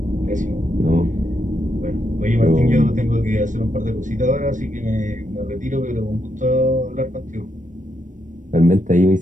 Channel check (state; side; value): late; left; 0.37 ms